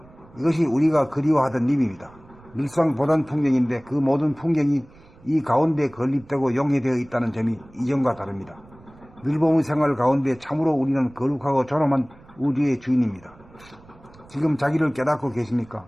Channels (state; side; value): noise; right; rumble, 25 dB below the sound